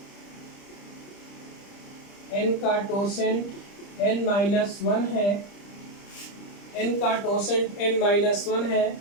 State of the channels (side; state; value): right; late; 30 ms